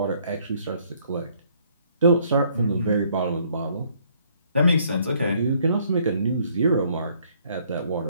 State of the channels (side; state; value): both; inverted; correlation -0.65